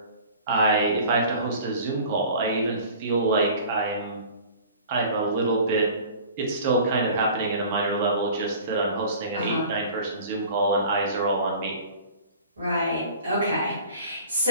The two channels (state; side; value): inverted; both; correlation -0.44